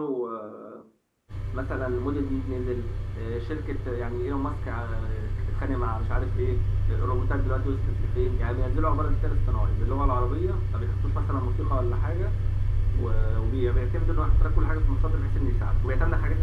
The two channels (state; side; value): identical; both; correlation 1.00